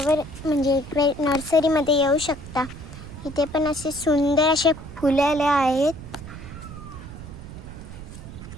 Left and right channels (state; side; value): noise; right; rumble, 13 dB below the sound